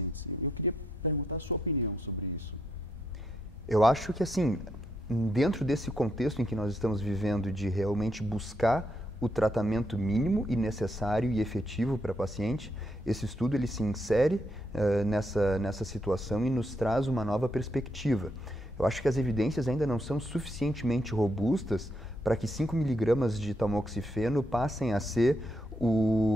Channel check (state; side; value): normal; both; correlation 0.78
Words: Eu queria perguntar a sua opinião sobre isso. Eu acho que, assim, dentro desse contexto em que nós estamos vivendo de realmente buscar o tratamento mínimo e necessário e efetivo para a paciente, esse estudo ele se insere nessa situação e nos traz uma nova perspectiva. Eu acho que as evidências ainda não são suficientemente robustas para que 5 mg de tamoxifeno passem a ser